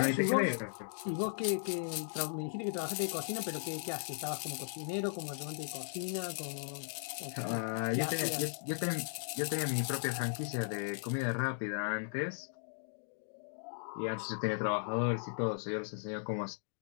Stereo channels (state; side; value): silent; right; digital silence